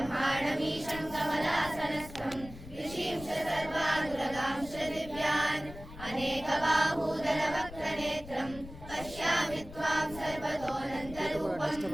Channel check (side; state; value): left; noise; rumble, 15 dB below the sound